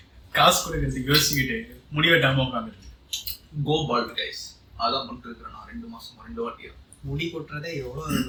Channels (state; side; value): identical; both; correlation 1.00